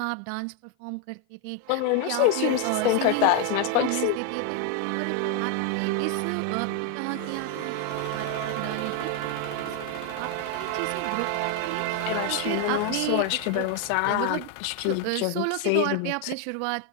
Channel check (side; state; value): both; different; correlation 0.01